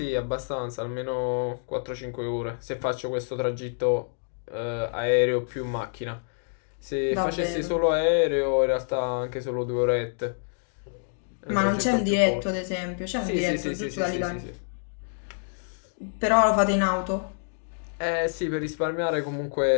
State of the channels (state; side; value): silent; right; digital silence